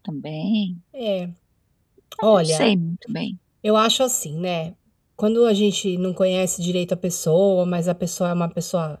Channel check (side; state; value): both; identical; correlation 1.00